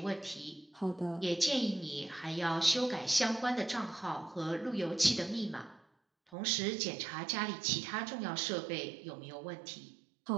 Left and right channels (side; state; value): left; drops out; at 6.4 s